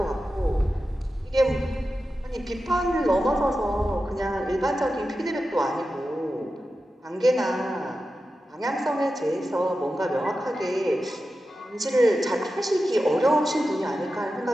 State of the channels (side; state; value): both; normal; correlation 0.92